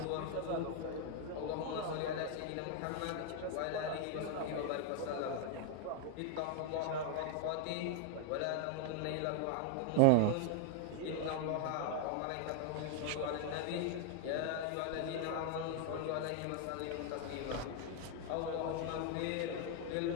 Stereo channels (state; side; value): different; both; correlation 0.00